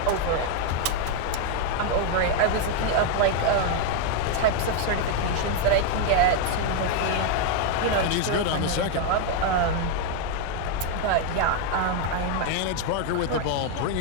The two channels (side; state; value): both; different; correlation 0.01